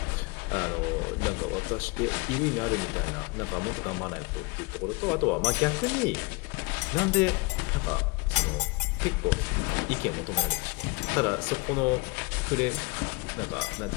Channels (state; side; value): quieter; right; 23.5 dB